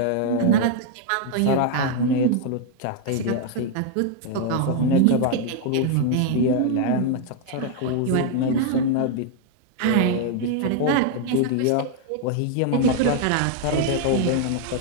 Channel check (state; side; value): different; both; correlation 0.00